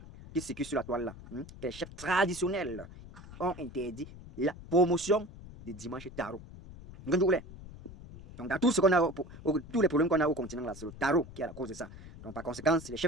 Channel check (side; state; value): left; noise; rumble, 16 dB below the sound